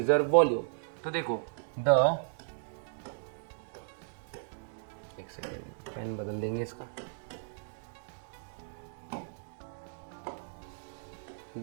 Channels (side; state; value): left; silent; digital silence